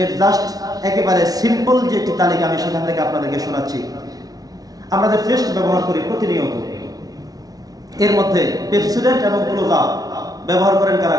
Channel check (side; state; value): left; late; 0.18 ms